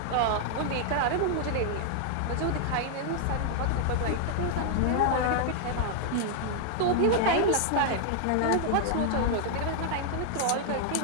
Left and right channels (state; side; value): different; both; correlation 0.00